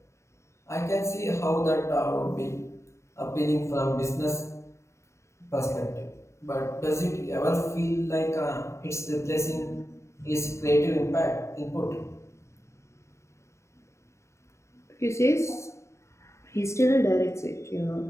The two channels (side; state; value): right; late; 0.14 ms